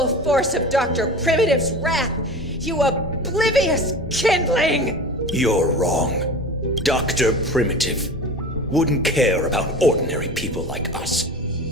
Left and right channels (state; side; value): normal; both; correlation 0.34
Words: force of Dr. Primitive's wrath, you oblivious kindling! You're wrong. Dr. Primitive wouldn't care about ordinary people like us.